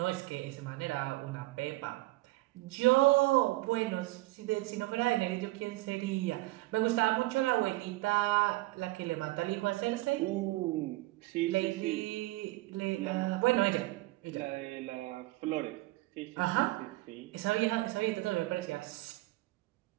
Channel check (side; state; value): left; quieter; 20.2 dB